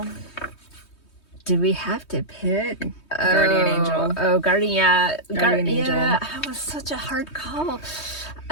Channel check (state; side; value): late; right; 3.2 ms